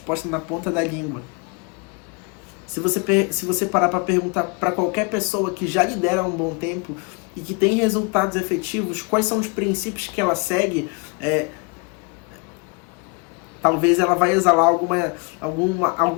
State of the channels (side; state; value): right; quieter; 31.9 dB